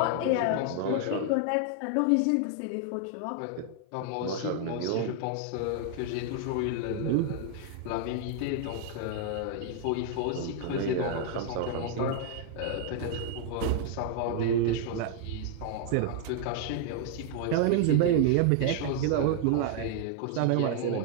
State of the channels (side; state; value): both; different; correlation 0.00